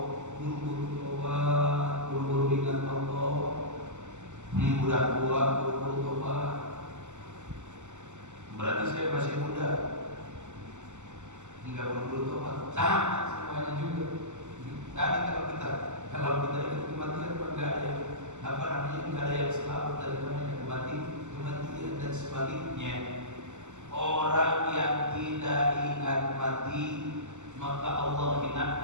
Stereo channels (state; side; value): late; left; 0.84 ms